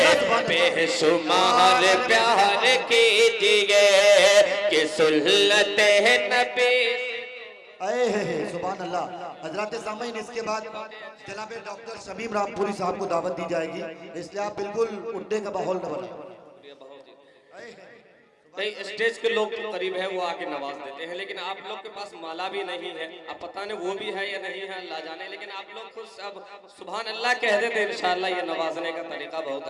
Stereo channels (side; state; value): both; identical; correlation 1.00